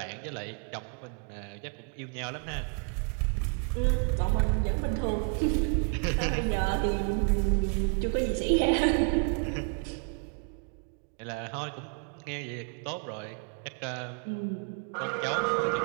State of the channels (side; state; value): left; quieter; 40.0 dB